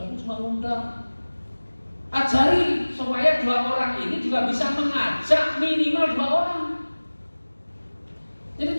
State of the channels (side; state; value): both; inverted; correlation -1.00